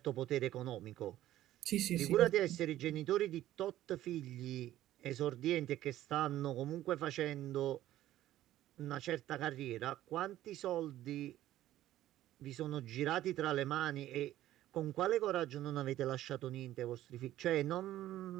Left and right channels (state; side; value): quieter; left; 13.8 dB